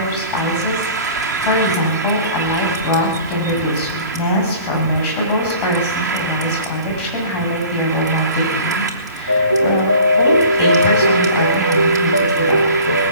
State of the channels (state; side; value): inverted; both; correlation -0.46